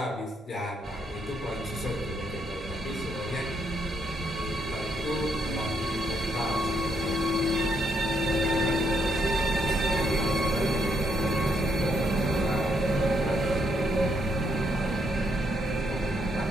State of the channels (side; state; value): both; normal; correlation 0.75